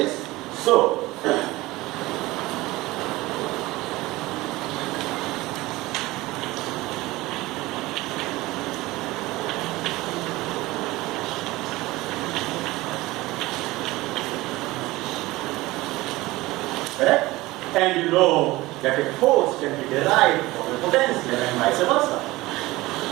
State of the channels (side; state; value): left; quieter; 19.5 dB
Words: So correct? And you know that a force can be derived from a potential and vice versa.